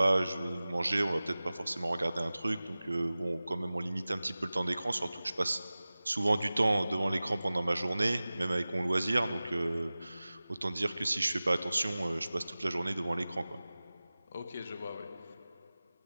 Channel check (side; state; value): both; inverted; correlation -0.97